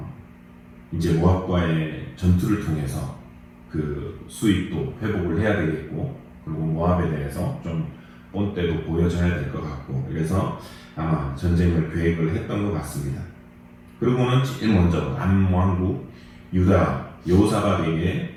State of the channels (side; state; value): both; identical; correlation 1.00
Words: 이제 모압과의 전투를 통해서 그 수익도 회복을 해야 되겠고, 그리고 모압에 대해서 좀 본때도 보여줘야 될 것 같고, 그래서 아마 전쟁을 계획을 했던 것 같습니다. 그리고는 제일 먼저 남왕국 유다 여호사밧에게